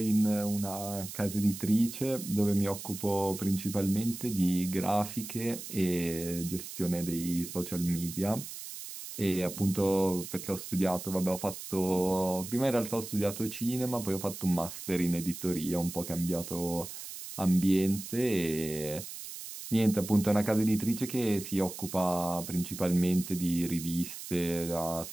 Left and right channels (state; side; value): noise; right; hiss, 10 dB below the sound